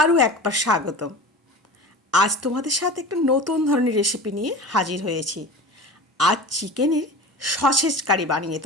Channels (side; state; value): both; normal; correlation 0.34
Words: একবার স্বাগতম। আজ তোমাদের সাথে একটা নতুন ধরনের রেসিপি নিয়ে হাজির হয়েছি। আজ চিকেনের সসেজ কারি বানিয়ে